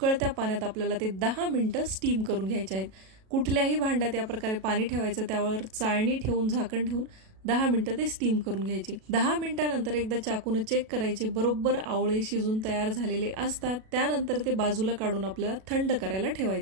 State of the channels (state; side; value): late; left; 37 ms